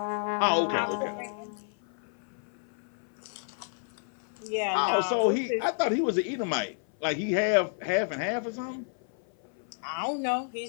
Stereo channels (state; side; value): silent; right; 56 dB below the other